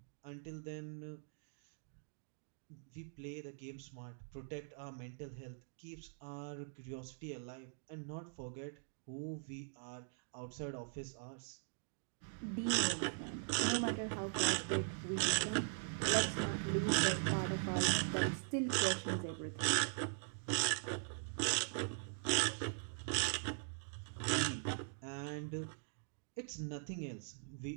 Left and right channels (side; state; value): left; silent; digital silence